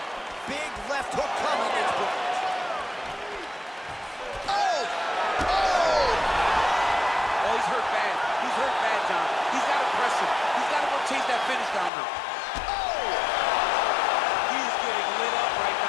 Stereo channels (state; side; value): drops out; right; at 11.9 s